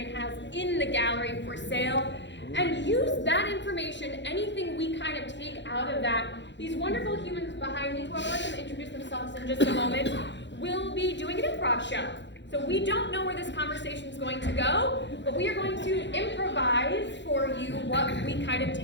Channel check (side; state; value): right; late; 0.52 ms